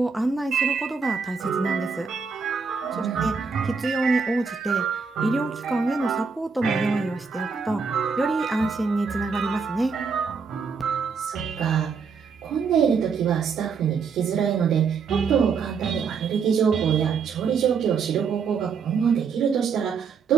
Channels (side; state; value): left; quieter; 5.5 dB